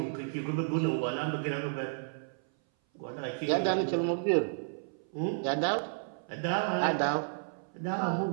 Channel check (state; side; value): silent; left; 56 dB below the other